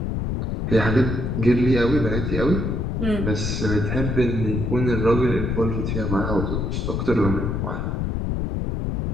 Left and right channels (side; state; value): left; noise; rumble, 1 dB below the sound